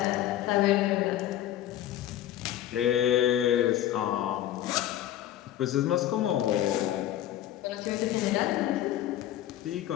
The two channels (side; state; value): right; quieter; 12.6 dB